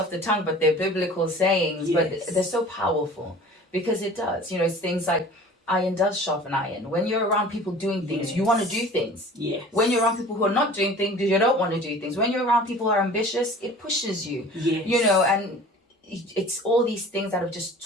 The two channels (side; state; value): both; normal; correlation 0.44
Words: the tongue, but they're biblical sayings, but they're so powerful, because it does, it's things like iron does sharpen iron. When you're around people doing things, you want to do things. Yes. When you're around people who are not doing things, you don't want to do things. When you're around people who are ambitious, it pushes you, and it's all these things that have just